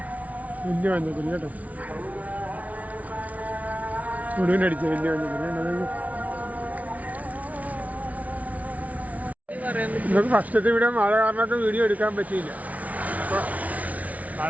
വലിയ മഞ്ഞപ്പൊടി കേട്ടോ, മുഴുവനടിച്ച വലിയ മഞ്ഞപ്പൊടി. നമുക്ക് ഫസ്റ്റത്തെ ഇവിടെ മഴ കാരണമൊക്കെ വീഡിയോ എടുക്കാൻ പറ്റിയില്ല. അപ്പോൾ മഴ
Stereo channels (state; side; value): late; left; 0.070 ms